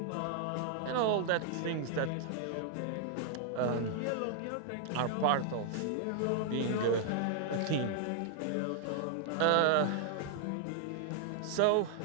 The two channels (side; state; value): both; different; correlation 0.00